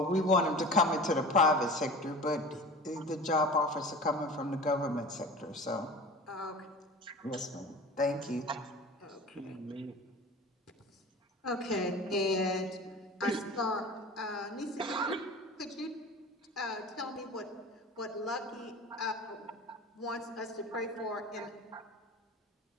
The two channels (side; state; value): both; normal; correlation 0.37